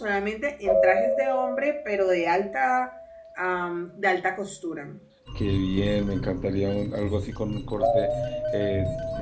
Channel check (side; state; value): both; identical; correlation 1.00